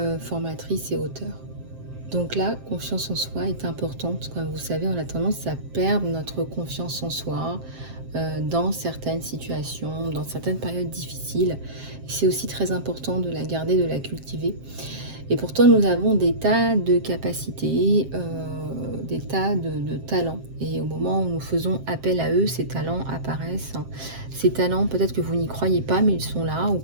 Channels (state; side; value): late; left; 7.6 ms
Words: formatrice et auteure. Donc la confiance en soi est importante. Comme vous savez, on a tendance à perdre notre confiance en soi dans certaines situations, dans certaines périodes difficiles. C'est aussi très important de la garder, de la cultiver. Et pourtant, nous avons des tas de capacités, des tas de talents. Et au moment où nous faisons appel à eux, ces talents apparaissent. Ces talents, peut-être que vous n'y croyez pas, mais ils sont là. Ou